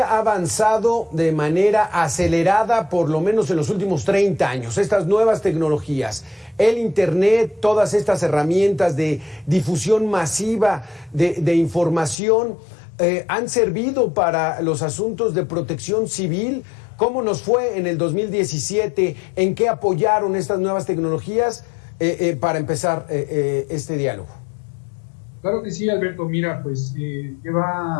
ha avanzado de manera acelerada, por lo menos en los últimos 30 años. Estas nuevas tecnologías, el Internet, todas estas herramientas de difusión masiva de información, han servido para los asuntos de protección civil. ¿Cómo nos fue en el 2017? ¿En qué apoyaron estas nuevas tecnologías para empezar este diálogo? Claro que sí, Alberto. Mira, pues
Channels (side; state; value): right; drops out; at 12.2 s